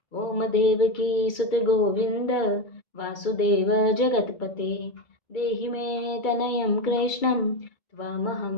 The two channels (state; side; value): late; right; 2.3 ms